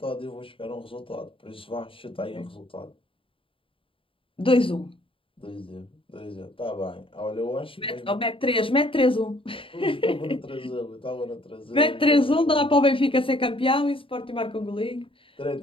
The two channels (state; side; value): late; right; 0.26 ms